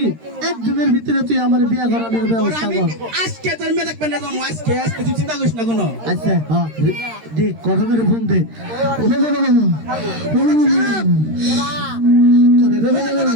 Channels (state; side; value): late; left; 13 ms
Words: একদিনের ভিতরে তুই আমার বিয়া করানোর ব্যবস্থা কর আজকে তোর মেয়ে দেখবেন না আজকে আজকে তুই চিন্তা করিস না কোনো আচ্ছা হ্যাঁ দে কথা করে ফোন দে